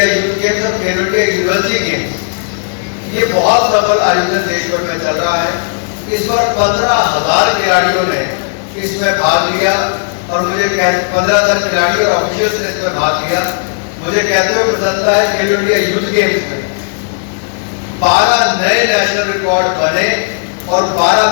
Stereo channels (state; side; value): silent; right; digital silence